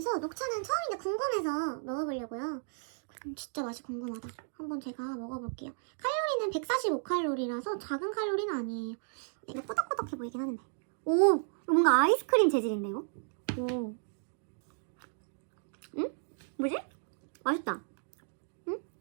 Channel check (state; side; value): silent; left; digital silence